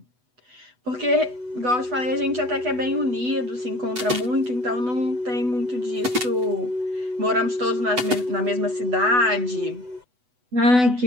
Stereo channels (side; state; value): left; late; 8.1 ms